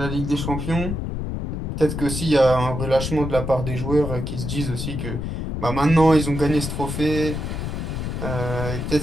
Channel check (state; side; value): noise; left; rumble, 4 dB below the sound